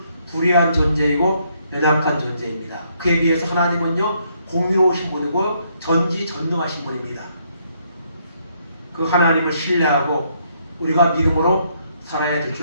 불의한 존재이고 연약한 존재입니다. 그에 비해서 하나님은요, 공의로우신 분이고 전지전능하신 분입니다. 그 하나님을 신뢰하고 우리가 믿음으로 살아야 될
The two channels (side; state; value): both; inverted; correlation -0.71